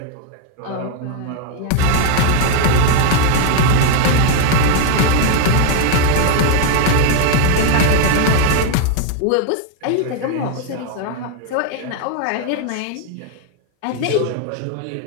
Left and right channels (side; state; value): both; different; correlation 0.00